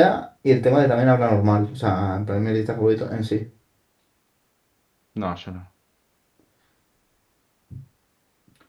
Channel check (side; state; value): both; identical; correlation 1.00